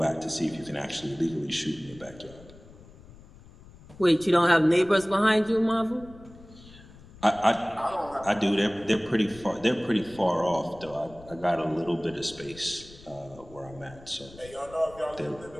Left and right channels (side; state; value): left; noise; rumble, 21 dB below the sound